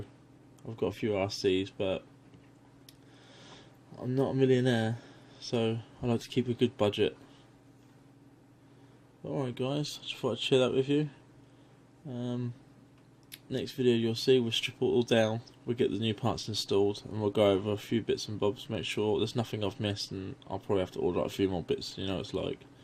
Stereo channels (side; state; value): both; identical; correlation 1.00